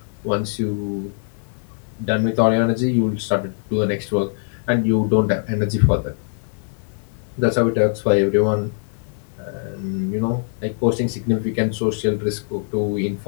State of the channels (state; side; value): silent; right; digital silence